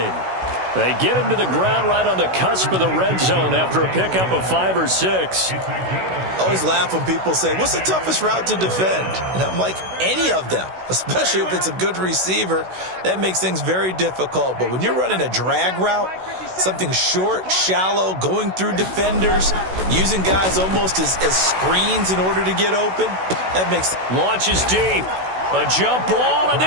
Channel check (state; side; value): late; left; 16 ms